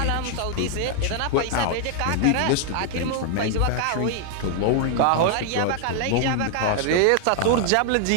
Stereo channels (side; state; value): both; different; correlation 0.00